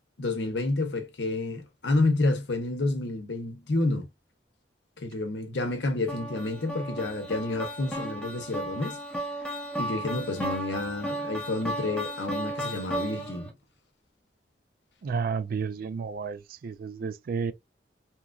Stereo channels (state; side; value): normal; both; correlation 0.56